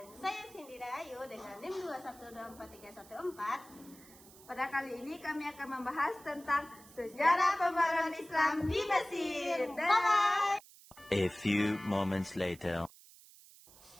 saya Cindy Ayu dengan NIM 21243114. Pada kali ini kami akan membahas tentang sejarah pembaruan Islam di Mesir. Bye! A few moments later.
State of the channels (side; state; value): right; noise; hiss, 22 dB below the sound